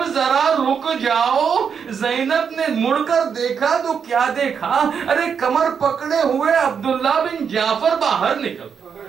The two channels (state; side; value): quieter; left; 6.8 dB